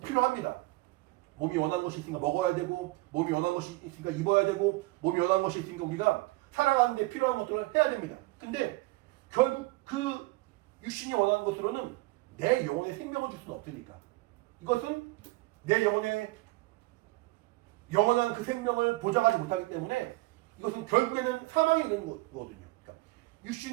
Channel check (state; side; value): quieter; left; 21.7 dB